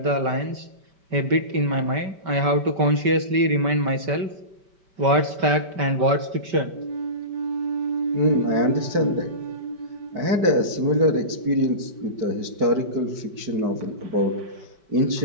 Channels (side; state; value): left; late; 5.2 ms